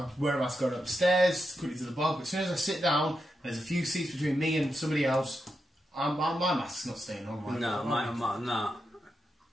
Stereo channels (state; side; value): normal; both; correlation 0.86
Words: wear a mask going upstairs, quickly to the bar. But as soon as I sit down, and there's a few seats between me and somebody else, my mask's not staying on.